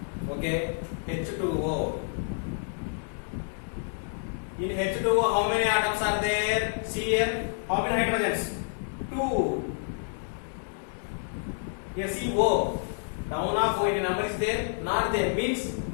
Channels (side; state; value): right; silent; 59 dB below the other